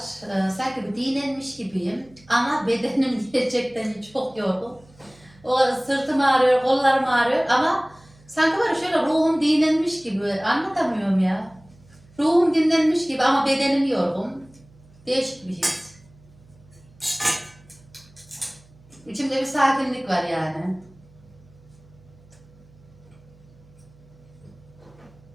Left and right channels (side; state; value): right; noise; hum, 27 dB below the sound